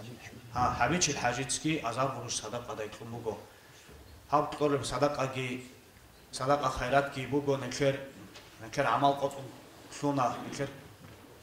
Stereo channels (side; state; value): both; identical; correlation 1.00